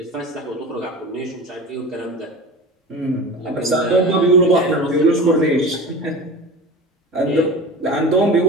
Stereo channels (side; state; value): both; normal; correlation 0.33